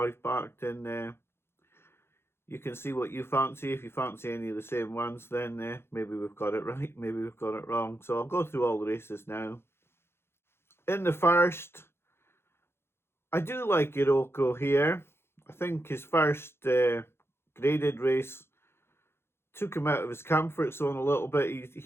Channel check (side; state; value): right; late; 0.12 ms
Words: backed in there. You can see what you fancy. If you fancy any of the same ones, then maybe we've got it right, maybe we've got it wrong. So I'll go through all the races now. In the first, I do like Iroko here. I think his first graded race took him out of his comfort zone a little bit.